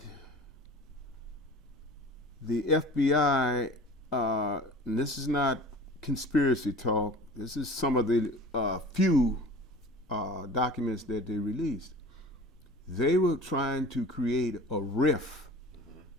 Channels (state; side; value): normal; both; correlation 0.41